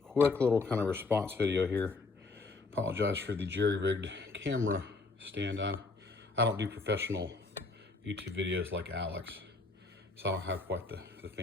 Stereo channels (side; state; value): right; quieter; 3.8 dB